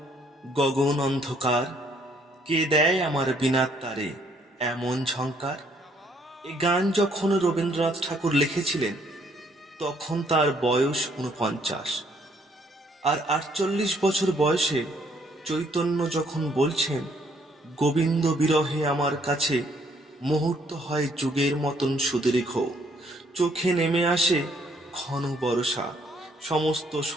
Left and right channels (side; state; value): both; normal; correlation 0.67